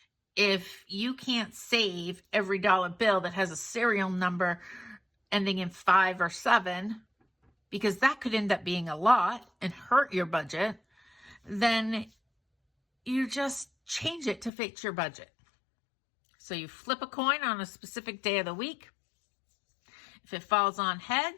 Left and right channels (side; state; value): right; drops out; at 14.5 s